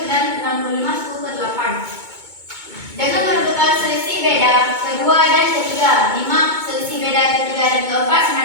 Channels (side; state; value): left; late; 2.2 ms